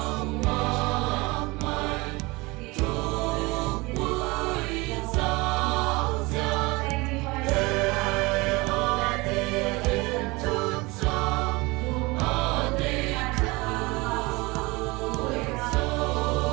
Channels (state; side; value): quieter; left; 24.0 dB